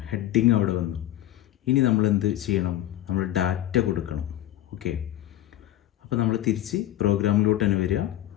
ഹെഡിങ് അവിടെ വന്നു. ഇനി നമ്മൾ എന്ത് ചെയ്യണം, നമ്മൾ ഡാറ്റ കൊടുക്കണം. ഓക്കെ, അപ്പോൾ നമ്മൾ തിരിച്ച് പ്രോഗ്രാമിലോട്ട് തന്നെ വരിക.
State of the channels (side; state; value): right; quieter; 13.5 dB